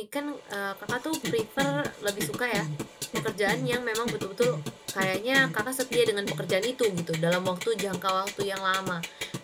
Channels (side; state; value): both; identical; correlation 1.00